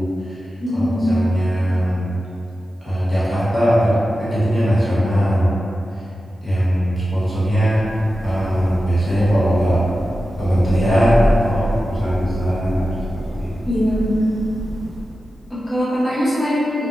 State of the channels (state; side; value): normal; both; correlation 0.93